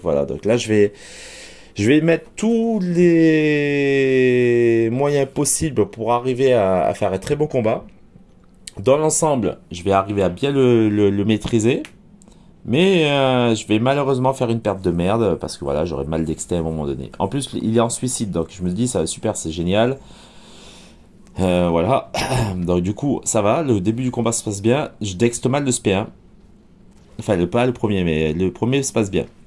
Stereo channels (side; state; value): both; identical; correlation 1.00